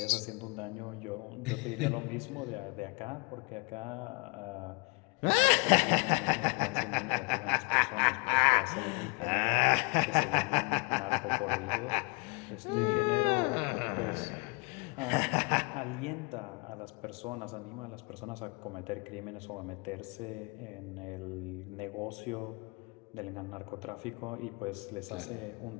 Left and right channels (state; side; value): quieter; right; 30.5 dB